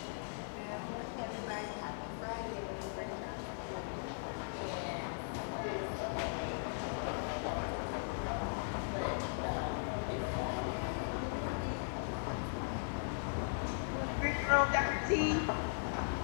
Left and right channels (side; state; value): right; silent; 52 dB below the other